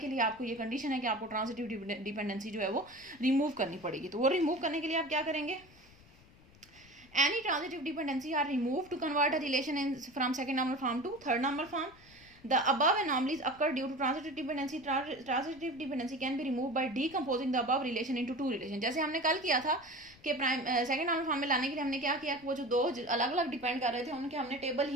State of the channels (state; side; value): noise; left; rumble, 25 dB below the sound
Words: लिए आपको ये कंडीशन है कि आपको ट्रांजिटिव डिपेंडेंसी जो है वो रिमूव करनी पड़ेगी। तो वो रिमूव करने के लिए आप क्या करेंगे, any transitive dependency are remove to convert a relation in from second normal form to third normal form. The above anomalies occur due to transitive dependency. Transitive dependency can be removed by decomposing the above relation into two relation. जैसे हमने कल किया था कि second normal form में लाने के लिए हमने क्या किया, वो जो दो अलग अलग डिपेंड कर रहे थे उनके हमने टेबल